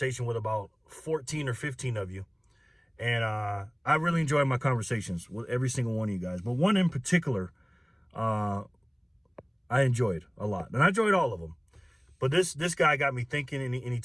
with about 14 or 15 of you. And I really enjoy my conversations with every single one of you guys. But one in particular, I enjoyed a lot. And I enjoyed all of them. But this guy got me thinking, and he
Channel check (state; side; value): identical; both; correlation 1.00